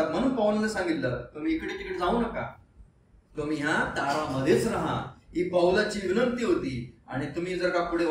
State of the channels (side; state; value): both; identical; correlation 1.00